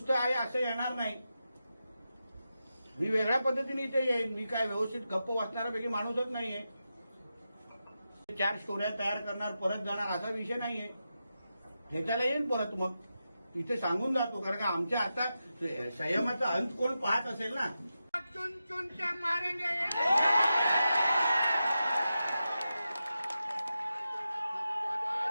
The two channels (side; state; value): both; inverted; correlation -0.90